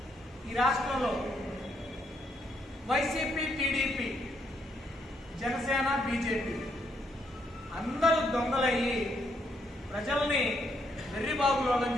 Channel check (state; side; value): normal; both; correlation 0.75